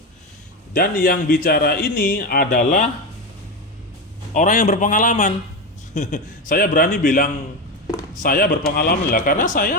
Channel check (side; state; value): both; normal; correlation 0.16